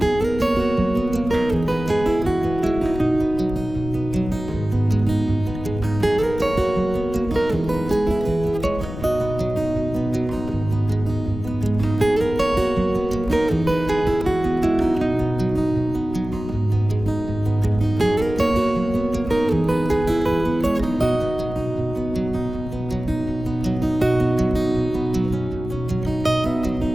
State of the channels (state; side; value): noise; left; rumble, 10 dB below the sound